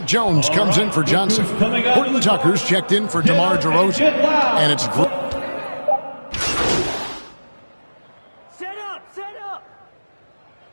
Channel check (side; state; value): both; inverted; correlation -1.00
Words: Jones comes in for Johnson. Horton Tucker's checked in for DeMar DeRozan. And it's Set up!